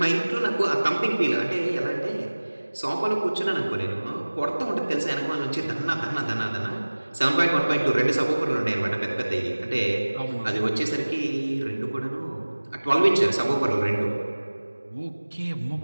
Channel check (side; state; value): both; inverted; correlation -1.00